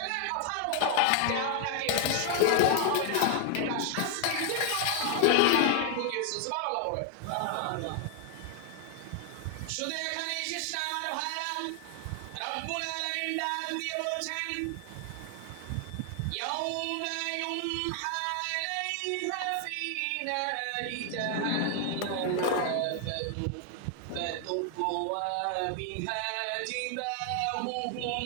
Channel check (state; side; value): different; both; correlation 0.00